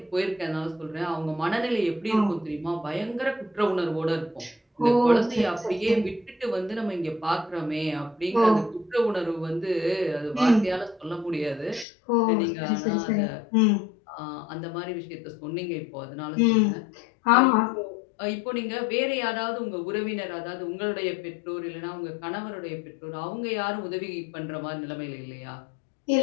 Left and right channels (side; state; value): right; drops out; at 11.9 s